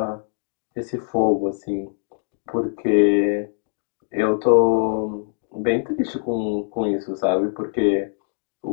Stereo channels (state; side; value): silent; right; digital silence